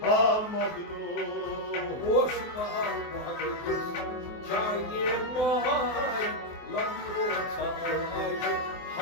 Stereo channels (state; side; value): late; right; 24 ms